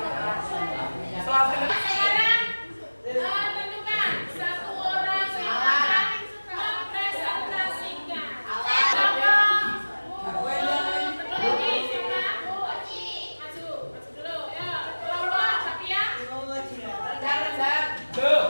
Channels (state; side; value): inverted; both; correlation -1.00